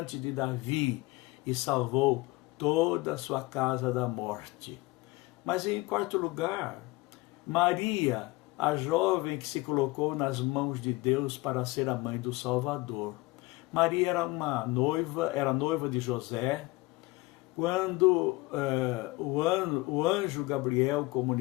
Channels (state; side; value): quieter; right; 22.1 dB